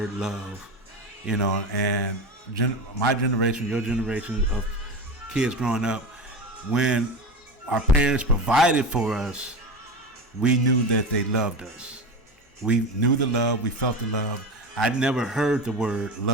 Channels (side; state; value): both; normal; correlation 0.25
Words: love, and my generation, your generation of kids growing up, when our parents provided for us, we knew that they loved us. We knew the love, we felt the love. I never heard the word